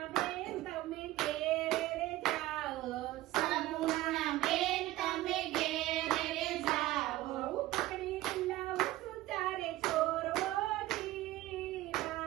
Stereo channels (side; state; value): left; quieter; 16.8 dB